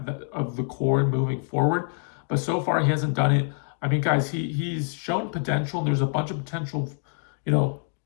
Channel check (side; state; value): right; silent; 61 dB below the other